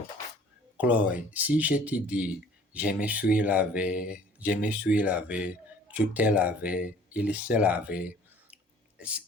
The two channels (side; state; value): both; normal; correlation 0.52